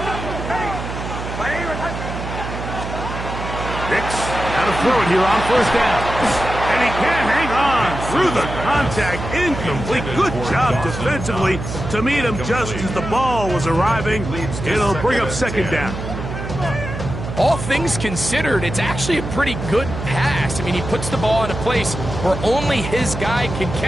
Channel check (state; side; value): noise; right; hum, 7 dB below the sound